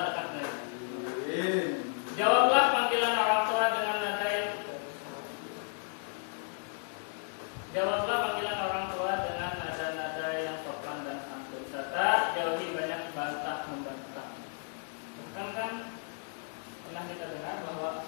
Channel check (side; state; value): right; silent; 56 dB below the other